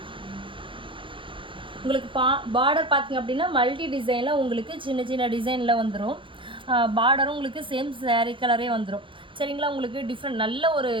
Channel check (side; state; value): left; late; 0.25 ms